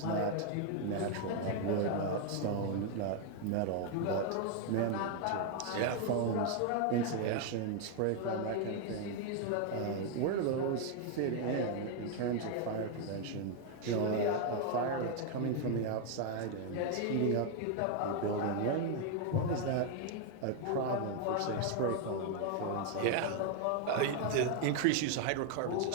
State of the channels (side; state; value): both; different; correlation 0.00